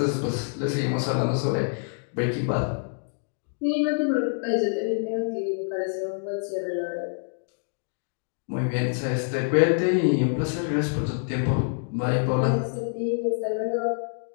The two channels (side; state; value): right; silent; digital silence